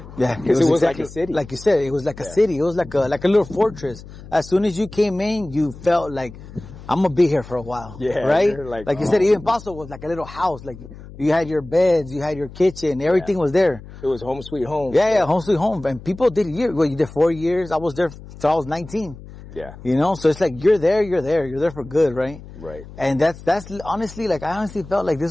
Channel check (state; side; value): noise; left; hum, 17 dB below the sound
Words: Yeah. Because it was exactly like a city. Like you said, it was like a city. It was like a little fortress. As soon as you came in, you felt like, I'm gonna be here for a while. Yeah. Right? Like you said, even Paso was like a little house. Like you had your beds, you had your kitchen, everything was there. It was home sweet home. Yeah, home sweet home. And people did you did 4 years. I was there till I was 19. Yeah. You know, so it's like, you're there for good, right? Right. And that's honestly, like, I honestly felt like